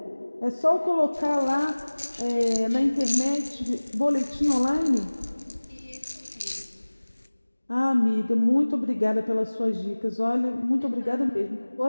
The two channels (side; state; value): both; inverted; correlation -1.00